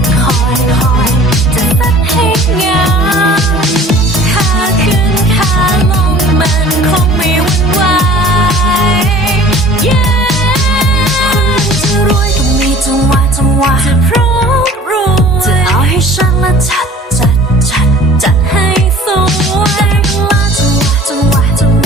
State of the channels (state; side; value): normal; both; correlation 0.47